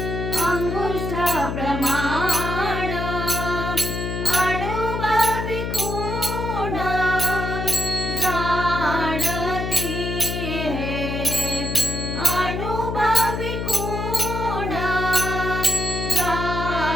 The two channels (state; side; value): noise; left; hum, 3 dB below the sound